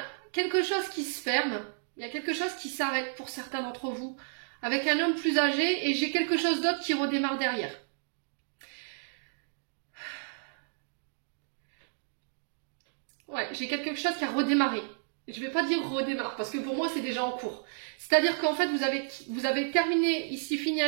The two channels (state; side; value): silent; left; digital silence